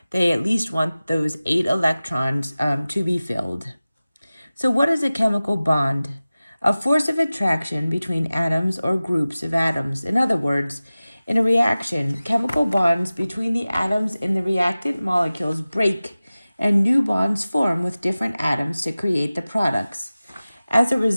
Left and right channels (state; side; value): inverted; both; correlation -0.97